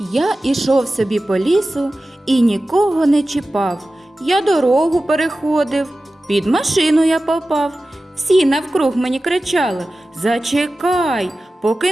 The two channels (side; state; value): both; normal; correlation 0.95